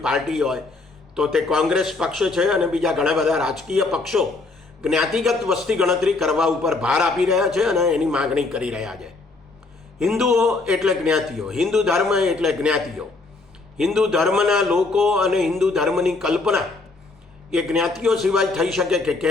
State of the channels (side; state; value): right; quieter; 3.6 dB